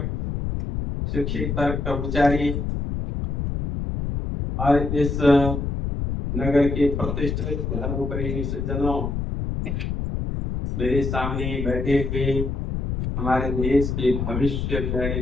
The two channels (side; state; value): left; noise; rumble, 2 dB below the sound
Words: शिक्षिका, कर्मचारी और इस नगर के प्रतिष्ठित धर्मप्रेमी सज्जनों, मेरे सामने बैठे हुए हमारे देश के भविष्य प्यारे